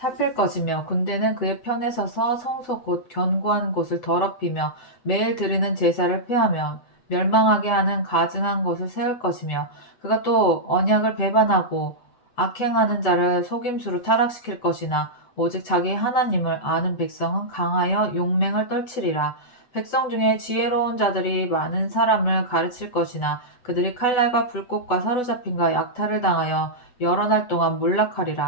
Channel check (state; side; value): late; right; 8.1 ms